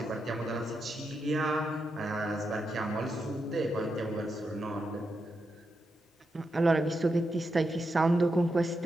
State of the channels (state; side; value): normal; both; correlation 0.86